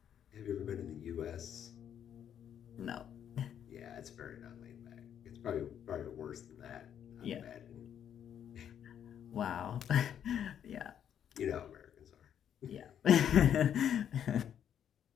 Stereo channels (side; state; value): right; quieter; 9.2 dB